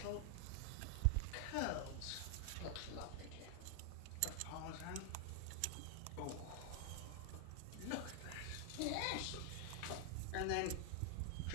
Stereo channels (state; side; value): different; both; correlation 0.00